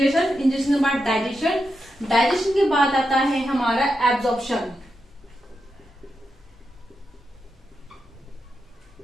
के बाद डाइजेशन, डाइजेशन के बाद आता है हमारा एब्जॉर्प्शन।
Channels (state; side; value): normal; both; correlation 0.86